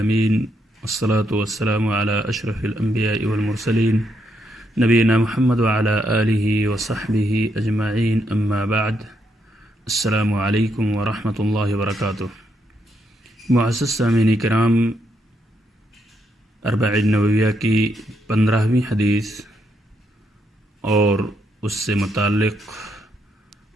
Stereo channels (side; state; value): both; normal; correlation 0.78